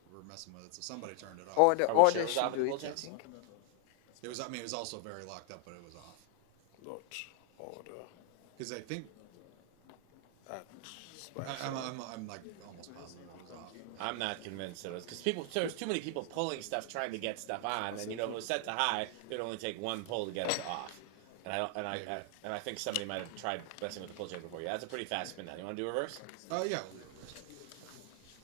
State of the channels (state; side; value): different; both; correlation 0.00